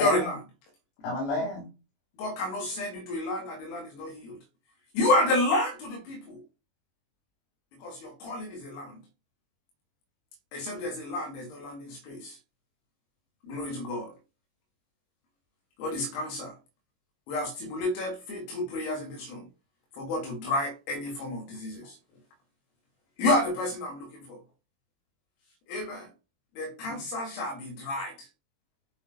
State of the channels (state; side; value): late; right; 22 ms